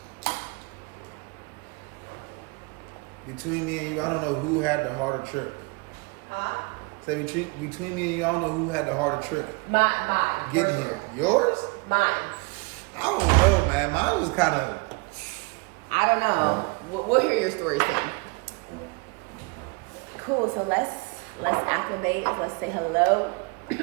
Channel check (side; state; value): left; quieter; 30.0 dB